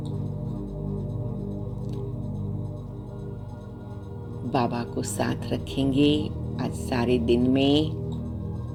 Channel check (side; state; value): both; identical; correlation 1.00